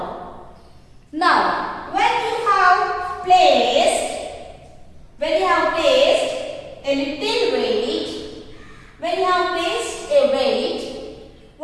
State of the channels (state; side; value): identical; both; correlation 1.00